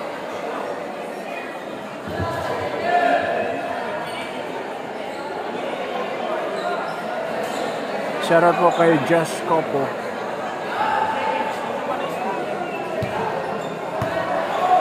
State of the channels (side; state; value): both; identical; correlation 1.00